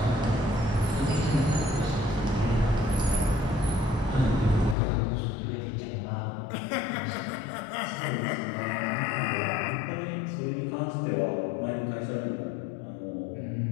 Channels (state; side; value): drops out; right; at 4.8 s